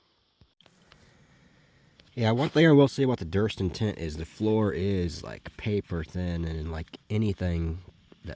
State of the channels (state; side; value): identical; both; correlation 1.00